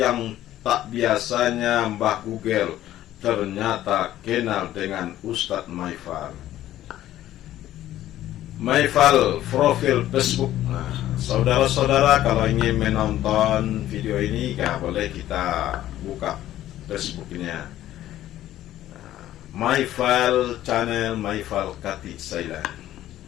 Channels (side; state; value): right; quieter; 13.4 dB